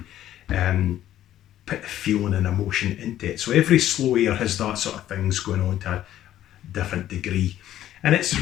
put the feeling and emotion into it. So every slow air has that sort of things going on to a different degree, and it's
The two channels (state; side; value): quieter; right; 12.4 dB